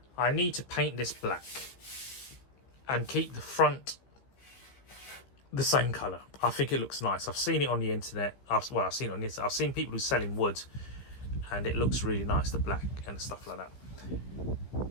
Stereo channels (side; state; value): right; late; 15 ms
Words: I need to paint this black and keep the front the same color. I think it looks nice. I've seen it on the internet. I've seen it on this. I've seen people who sell in wood, and it looks really nice, the black and stuff like that.